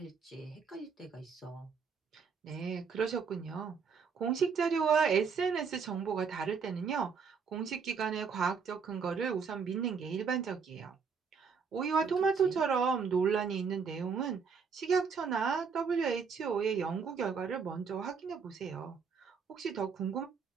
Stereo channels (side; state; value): left; quieter; 5.8 dB